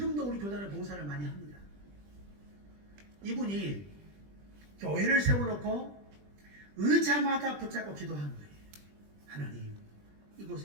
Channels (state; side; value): late; left; 20 ms